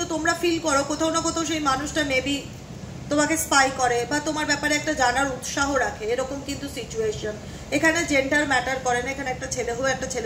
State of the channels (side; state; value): both; identical; correlation 1.00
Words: তোমরা ফিল করো কোথাও না কোথাও সেই মানুষটা মেবি তোমাকে স্পাই করে বা তোমার ব্যাপারে একটা জানার উৎসাহ রাখে, এরকম কিন্তু সিচুয়েশন। এখানে জেন্ডার ম্যাটার করে না, এখানে একটা ছেলে হয়ে একটা